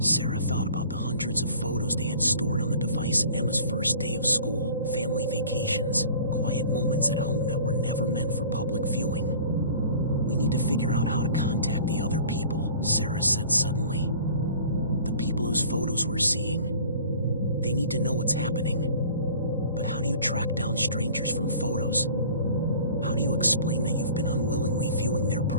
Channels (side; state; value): both; inverted; correlation -0.46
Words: thought about the hundreds of photos they had stored on the device: Emma's first day of school, family vacations, quiet moments at home that were never meant for public viewing. "We need to figure out how to contact the other people," Sarah said suddenly. "The people whose photos we're seeing. They need to know what's happening. But how do you track down strangers from photos? How do you explain that you've been unwillingly viewing their